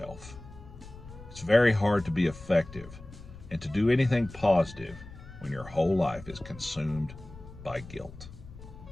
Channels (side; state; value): left; noise; rumble, 16 dB below the sound